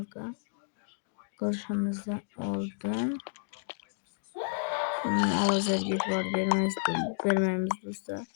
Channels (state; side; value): silent; right; digital silence